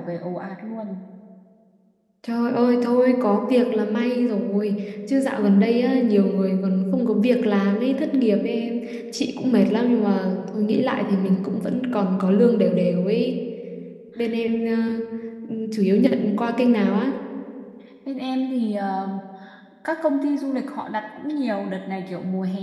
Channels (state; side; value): identical; both; correlation 1.00